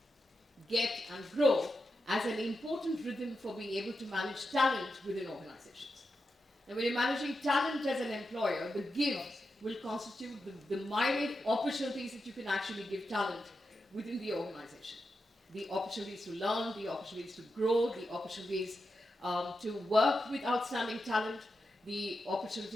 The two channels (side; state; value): both; normal; correlation 0.88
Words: get, and grow as an important rhythm for being able to manage talent within organizations. Now, when you're managing talent as an employer, the give will constitute the myriad opportunities that you can actually give talent within the organization. The opportunities to learn, the opportunities to grow, the opportunities to work with outstanding talent, the